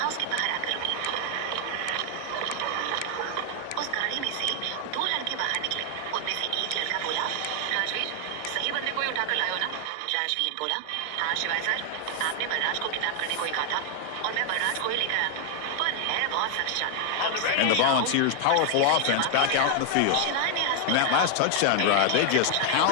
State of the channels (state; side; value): different; both; correlation 0.00